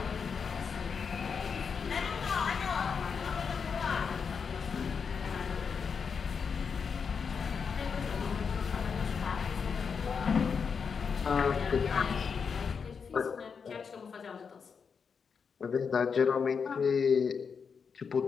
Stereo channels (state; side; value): quieter; right; 6.0 dB